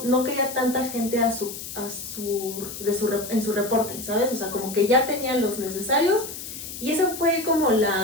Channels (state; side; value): noise; left; hiss, 10 dB below the sound